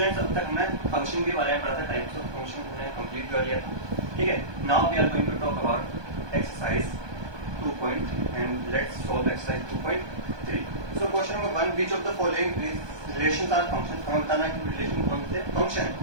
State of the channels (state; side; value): late; left; 1.2 ms